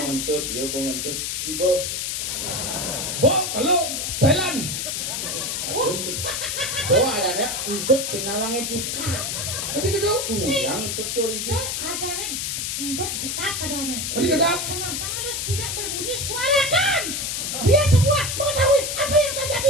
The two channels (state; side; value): noise; left; hiss, 2 dB below the sound